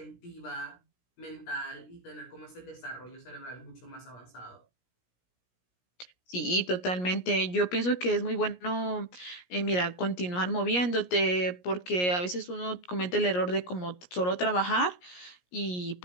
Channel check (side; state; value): right; late; 17 ms